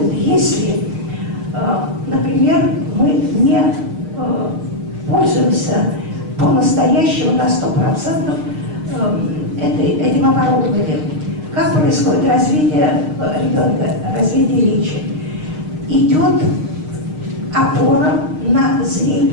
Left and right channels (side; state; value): left; late; 6.5 ms